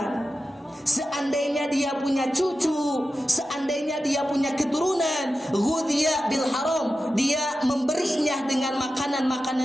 seandainya dia punya cucu, seandainya dia punya keturunan, ghudhiya bil haram, dia memberinya dengan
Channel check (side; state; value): both; normal; correlation 0.92